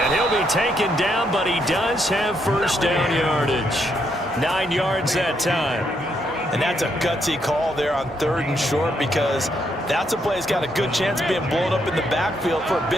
he'll be taken down, but he does have first down yardage. 9 yards that time. And that's a gutsy call there on 3rd and short because that's a play that's got a good chance of being blown up in the backfield for a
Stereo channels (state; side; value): normal; both; correlation 0.76